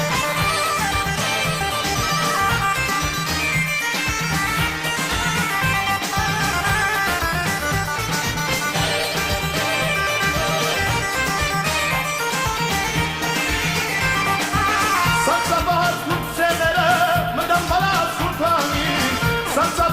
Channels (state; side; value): identical; both; correlation 1.00